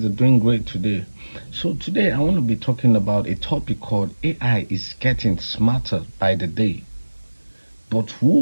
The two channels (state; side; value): inverted; both; correlation -1.00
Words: are doing great today. So, today I want to be talking about a topic called AI is getting smarter by the day, but